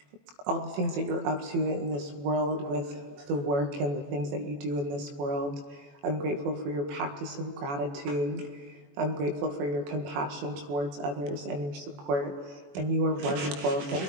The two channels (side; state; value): left; late; 21 ms